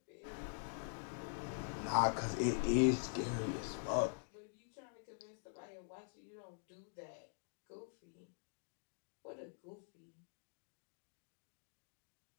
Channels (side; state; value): right; silent; digital silence